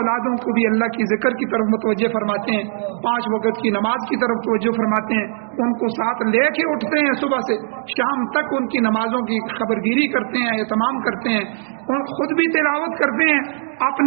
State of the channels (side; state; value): left; silent; 66 dB below the other